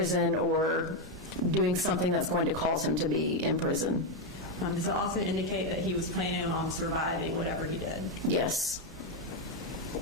or doing something that's going to cause him to be in prison. Does it also indicate that he was planning on surviving whatever he did? Yes.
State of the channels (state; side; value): normal; both; correlation 0.05